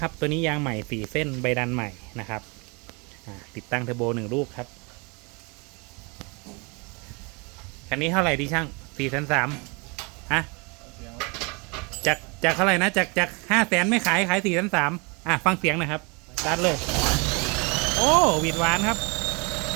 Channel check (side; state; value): left; quieter; 30.1 dB